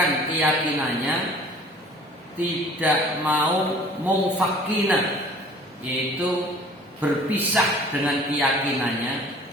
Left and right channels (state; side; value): normal; both; correlation 0.49